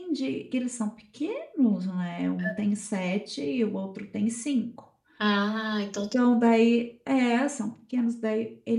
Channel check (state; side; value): identical; both; correlation 1.00